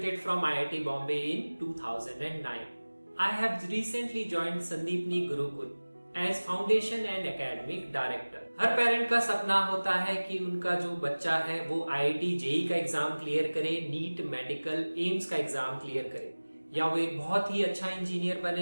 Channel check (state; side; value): inverted; both; correlation -1.00